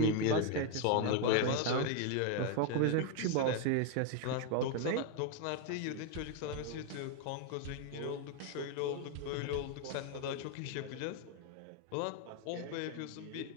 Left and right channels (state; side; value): different; both; correlation 0.01